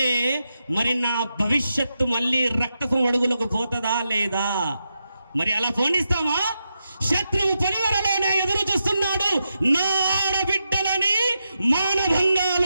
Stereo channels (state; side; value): inverted; both; correlation -0.86